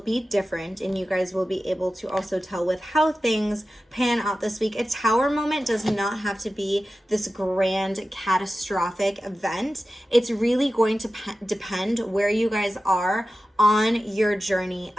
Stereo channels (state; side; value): normal; both; correlation 0.94